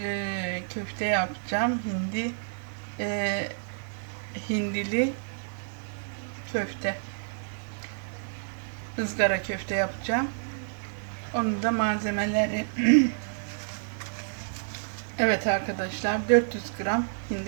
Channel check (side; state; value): left; silent; digital silence